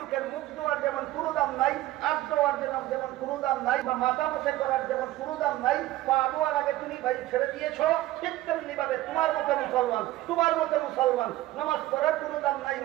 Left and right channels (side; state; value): left; quieter; 16.1 dB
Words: মুখ ধোয়ার যেমন কোনো দাম নাই, হাত ধোয়ার যেমন কোনো দাম নাই, বা মাথা মুছে করার যেমন কোনো দাম নাই, পা ধোয়ার আগে তুমি বায়ু ছেড়ে দিয়েছো, ঠিক তেমনি ভাবে তোমার মতো মুসলমান নামাজ পড়ার কোনো দাম নাই,